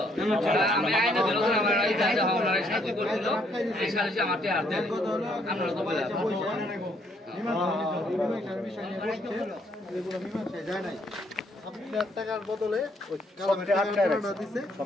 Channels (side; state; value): both; normal; correlation 0.69